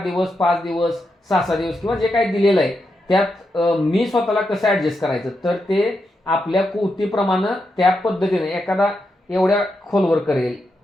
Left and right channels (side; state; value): both; normal; correlation 0.85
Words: 5 दिवस, 6 दिवस किंवा जे काही दिलेलं आहे त्यात मी स्वतःला कसं ऍडजस्ट करायचं, तर ते आपल्या कुवतीप्रमाणे त्या पद्धतीने एखादा एवढ्या खोलवर करेल,